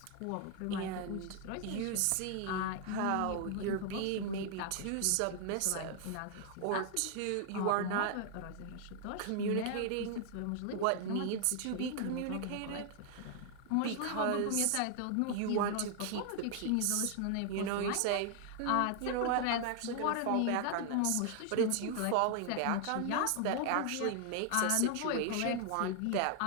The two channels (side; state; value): both; different; correlation 0.00